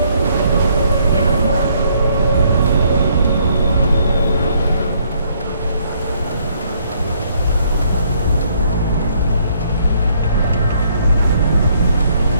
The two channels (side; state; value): both; inverted; correlation -0.67